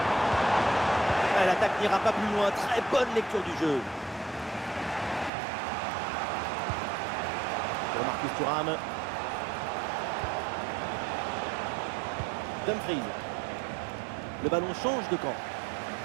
Ah, l'attaque n'ira pas plus loin. Très bonne lecture du jeu. Pour Marcus Thuram. Dumfries. Le ballon change de camp.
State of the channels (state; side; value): drops out; left; at 5.3 s